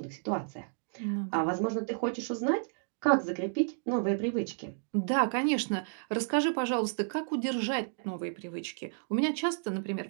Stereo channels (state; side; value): silent; left; digital silence